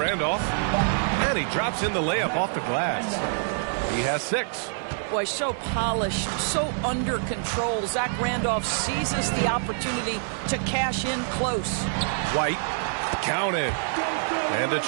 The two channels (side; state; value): left; silent; 61 dB below the other